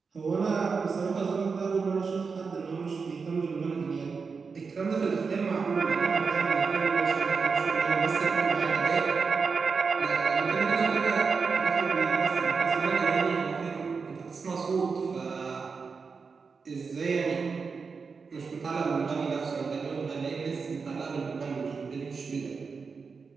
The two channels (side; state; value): left; quieter; 5.1 dB